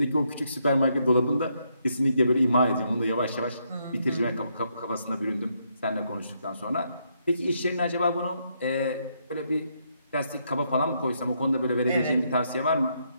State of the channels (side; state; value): both; inverted; correlation -0.76